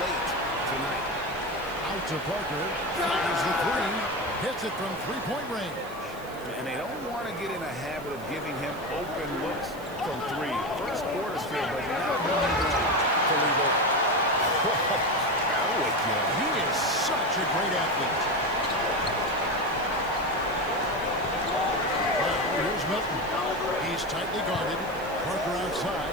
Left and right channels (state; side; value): noise; right; hiss, 21 dB below the sound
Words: tonight. Out to Parker. Fires the three. Hits it from three-point range. And they don't want to get in a habit of giving him open looks from three. First quarter still, but not moving to leave open. He is such a great athlete. Well, here's Milton. He's tightly guarded. Parker